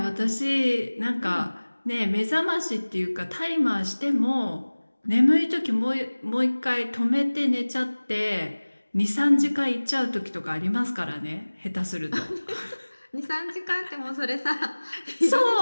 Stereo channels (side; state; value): both; inverted; correlation -1.00